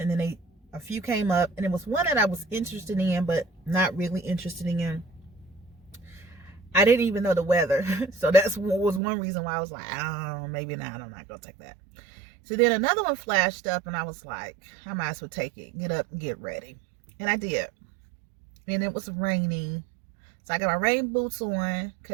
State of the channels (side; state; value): left; drops out; at 9.0 s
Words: then a few came up, and it was one that I was interested in but not really interested in. I didn't even know the weather, so that's was one reason why I was like, oh, maybe not, I'm not gonna take that. So then another one flashed up, and I was like, I might as well take it, get up and get ready. And I did, and it was raining. So I got my rain boots on